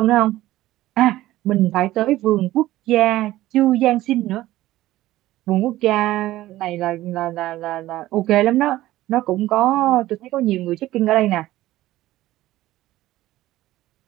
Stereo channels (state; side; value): quieter; left; 15.8 dB